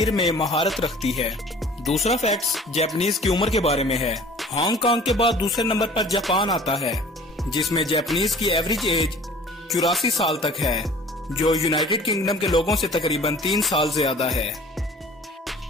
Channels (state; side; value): normal; both; correlation 0.48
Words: में महारत रखती है। दूसरा फैक्ट जापानीज की उम्र के बारे में है। हांगकांग के बाद दूसरे नंबर पर जापान आता है जिसमें जापानीज की एवरेज एज 84 साल तक है, जो यूनाइटेड किंगडम के लोगों से तकरीबन 3 साल ज्यादा है।